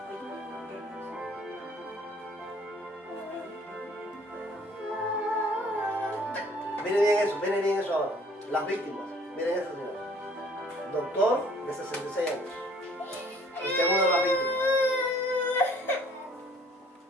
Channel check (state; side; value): normal; both; correlation 0.57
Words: Miren bien eso ahora. Las víctimas, miren eso, señor. Doctor de 66 años. Este es uno de las víctimas.